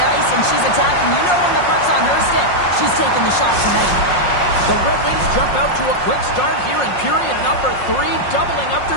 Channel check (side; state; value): right; late; 5.6 ms